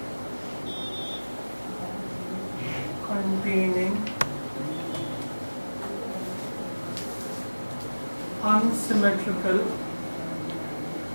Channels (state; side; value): inverted; both; correlation -1.00